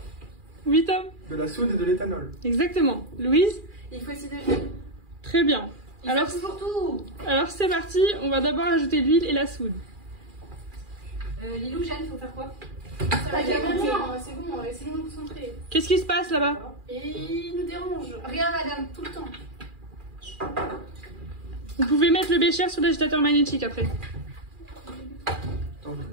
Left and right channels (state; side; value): late; left; 2.4 ms